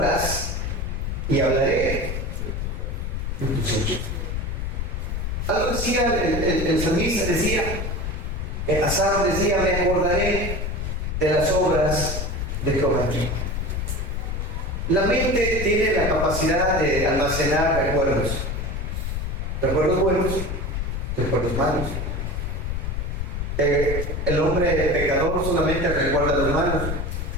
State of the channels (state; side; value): noise; left; rumble, 3 dB below the sound